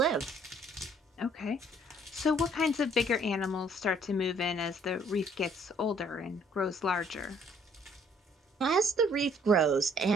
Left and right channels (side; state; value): both; normal; correlation 0.61